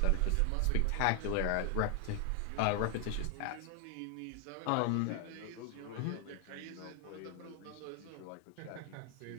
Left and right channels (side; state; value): both; different; correlation 0.00